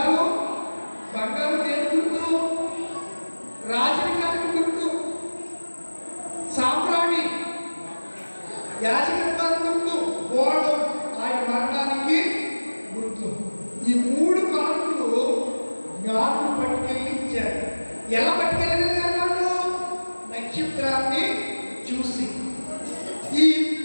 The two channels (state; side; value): inverted; both; correlation -1.00